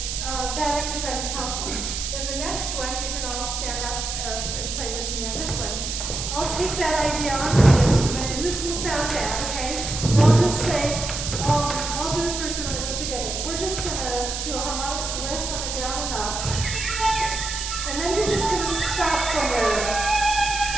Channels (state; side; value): noise; right; hiss, 4 dB below the sound